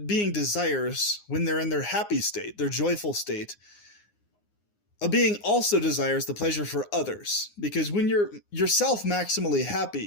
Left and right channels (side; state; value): right; late; 9.7 ms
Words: desires, when they're in their happy state, their joyful state, a being also desires the pleasure for others. Because when you're yourself maximally